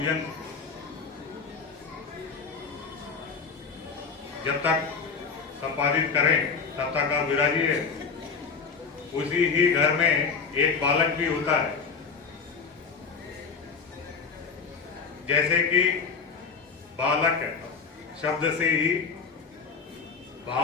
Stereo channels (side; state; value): right; quieter; 5.4 dB